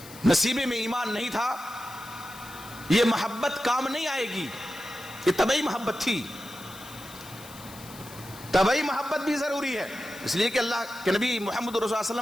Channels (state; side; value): noise; left; hiss, 17 dB below the sound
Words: نصیبے میں ایمان نہیں تھا, یہ محبت کام نہیں آئے گی. یہ طبعی محبت تھی. طبعی محبت بھی ضروری ہے, اس لیے کہ اللہ کے نبی محمد رسول اللہ صلی اللہ علیہ